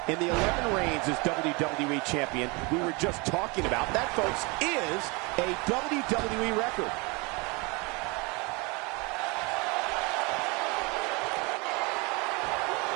In the 11 reigns as WWE Champion we were just talking about, that, folks, is a WWE record.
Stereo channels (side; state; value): left; quieter; 28.0 dB